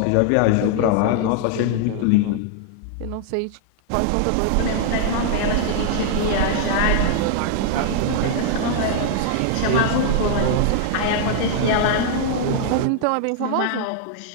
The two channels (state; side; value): different; both; correlation -0.01